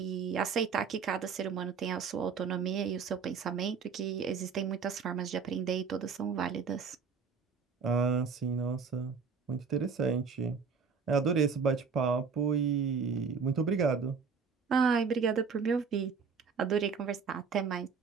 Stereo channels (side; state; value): left; quieter; 5.7 dB